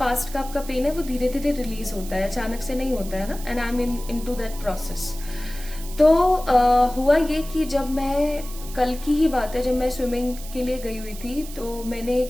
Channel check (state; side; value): noise; right; hiss, 15 dB below the sound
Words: का आपका पेन है वो धीरे धीरे रिलीज होता है, अचानक से नहीं होता है ना। And I am into that process. तो हुआ ये कि जब मैं कल की ही बात है, जब मैं स्विमिंग के लिए गई हुई थी तो मैंने